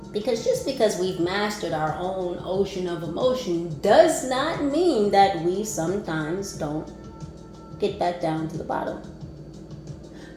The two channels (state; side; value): identical; both; correlation 1.00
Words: Because just because we've mastered our own ocean of emotion does not mean that we sometimes don't get back down to the bottom.